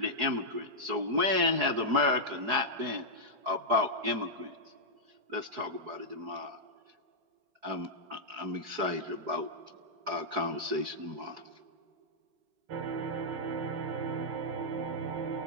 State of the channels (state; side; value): late; left; 4.7 ms